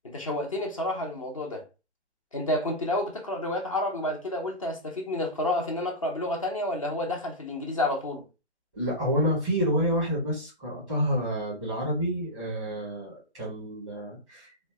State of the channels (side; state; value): both; normal; correlation -0.06